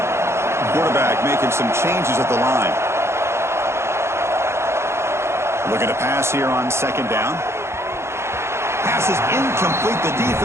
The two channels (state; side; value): late; left; 0.13 ms